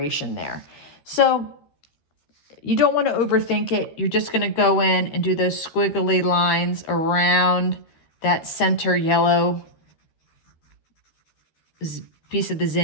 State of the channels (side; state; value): right; late; 13 ms